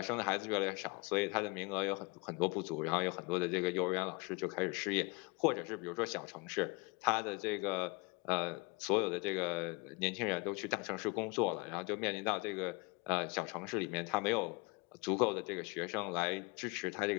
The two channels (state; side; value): quieter; right; 28.4 dB